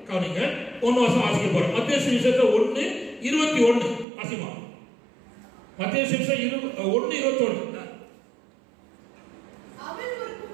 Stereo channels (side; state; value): left; drops out; at 4.0 s